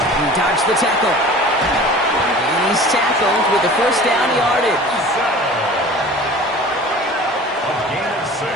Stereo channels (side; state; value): both; normal; correlation 0.42